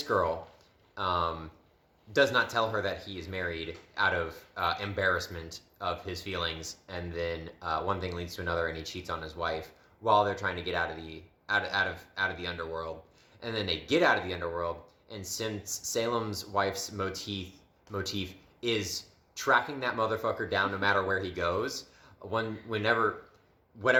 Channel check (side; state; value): both; identical; correlation 1.00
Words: girl. Does not tell her that he is married out of embarrassment of his feelings, and then one thing leads to another, and he cheats on his wife while they're trying to get out of the underworld. And then they get out of the underworld, and since Salem's wife's motif is tracking that motherfucker down no matter where he goes, whatever